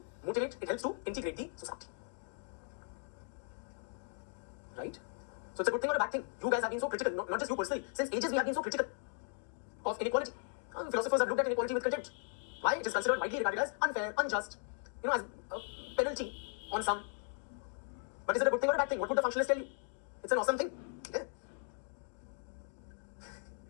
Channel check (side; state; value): right; silent; 53 dB below the other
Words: motivate, it helps to integrate the society. Right? So it's a good thing or a bad thing. You guys have been so critical, not just you personally. Since ages we have been so critical of inequality. Philosophers have looked at inequality with contempt. Why? It is considered widely regarded as unfair, unjust, as a penalty on some. But is it a good thing or a bad thing? What would the functionalist tell you? It's an awesome thing. Yeah.